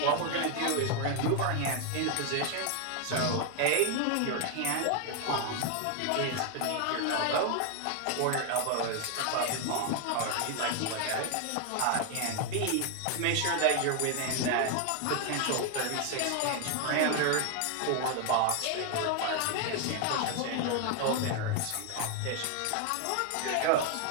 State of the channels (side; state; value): both; different; correlation 0.01